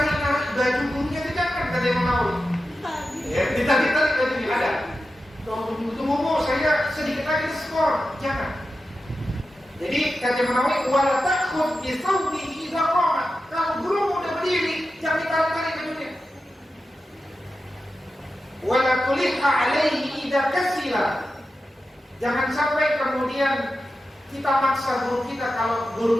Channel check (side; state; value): both; normal; correlation 0.91